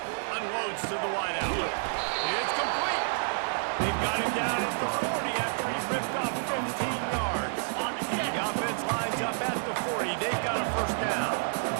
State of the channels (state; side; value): silent; left; digital silence